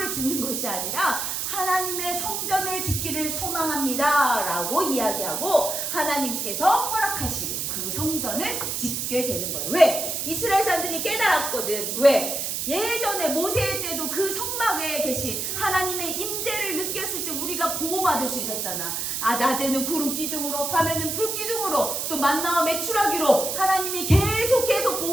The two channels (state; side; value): noise; right; hiss, 2 dB below the sound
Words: 짓는 것이 아니라 하나님의 성전을 짓기를 소망합니다 라고 이야기하고 하나님께서 허락하시고 그 성전을 짓게 되는 거예요. 왜? 이스라엘 사람들이 깨달았거든. 왜? 예전에 모세 때도 그 성막에 계신 하나님의 임재를 느꼈을 때 우리가 보호받을 수 있었잖아. 낮에는 구름 기둥으로, 밤에는 불 기둥으로, 또 만나와 메추라기로 하나님이 계속